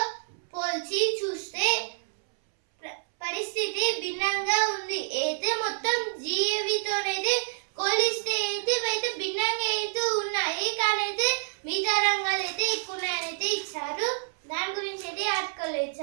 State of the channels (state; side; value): silent; left; 59 dB below the other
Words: పోల్చి చూస్తే పరిస్థితి భిన్నంగా ఉంది. అయితే మొత్తం జిఏవితోనైతే పోలిస్తే అయితే భిన్నంగా అయితే ఉన్నాయి. కానీ అయితే మిగతా రంగాలు అయితే ఎక్కువ ఉన్నాయని అయితే ఇచ్చారు. దాని గురించి అయితే ఆర్టికల్